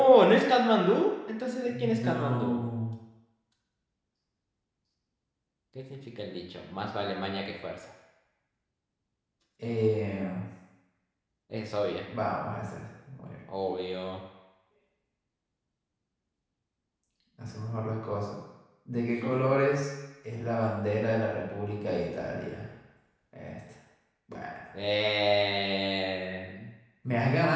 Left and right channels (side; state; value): both; identical; correlation 1.00